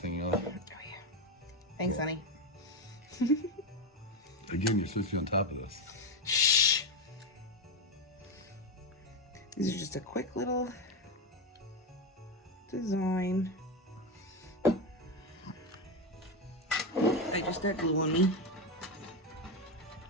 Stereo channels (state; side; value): normal; both; correlation 0.12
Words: off. Oh yeah. Thanks, honey. Again, you're switching on top of this. Shh. These are just a quick little design. I just got glue on me.